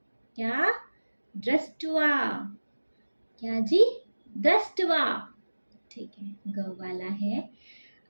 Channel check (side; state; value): both; inverted; correlation -1.00